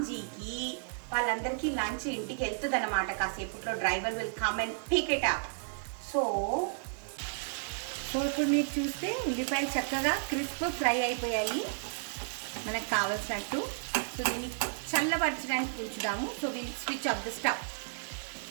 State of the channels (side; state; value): left; silent; 56 dB below the other